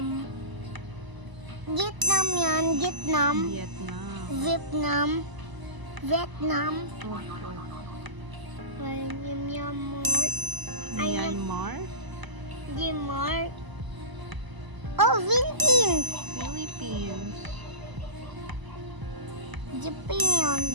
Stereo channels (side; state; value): left; late; 1.0 ms